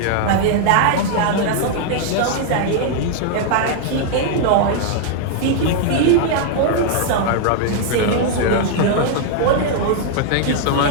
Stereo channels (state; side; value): different; both; correlation 0.00